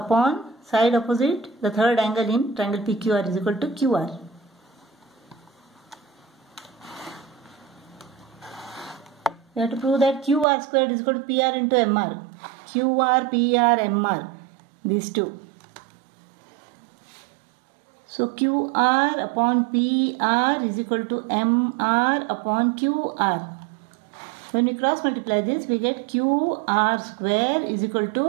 side opposite the third angle in triangle PQR is equal to QR. We have to prove that QR squared is equal to PR into MR. QR, PR, MR. These two. So QR upon PR is equal to MR upon QR. When we cross multiply this, we get QR square is equal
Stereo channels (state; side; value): drops out; left; at 10.5 s